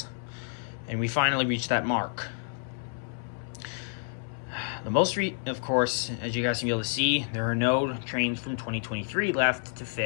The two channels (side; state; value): right; silent; 58 dB below the other